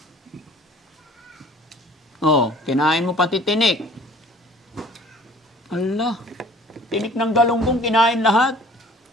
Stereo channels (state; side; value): normal; both; correlation 0.50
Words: Oh, kinain mo pati tinik. Allah. Tinik ng galunggong kinain lahat.